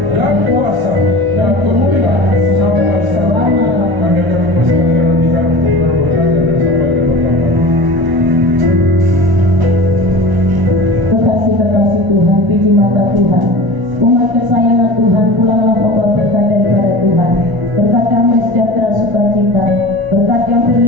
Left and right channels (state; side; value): late; left; 1.0 ms